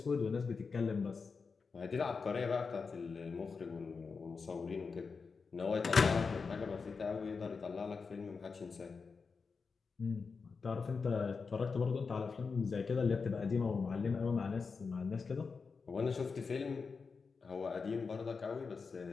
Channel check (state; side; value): quieter; right; 5.0 dB